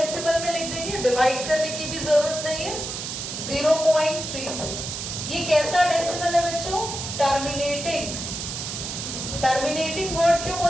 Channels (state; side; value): noise; right; hiss, 6 dB below the sound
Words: में लिख देंगे, डिवाइड करने की भी जरूरत नहीं है। 0.36। ये कैसा डेसिमल है बच्चों? टर्मिनेटिंग। टर्मिनेटिंग वर्ड क्यों